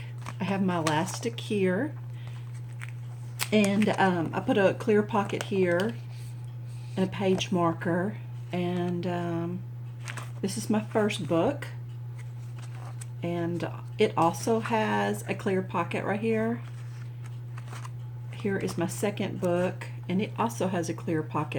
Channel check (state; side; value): identical; both; correlation 1.00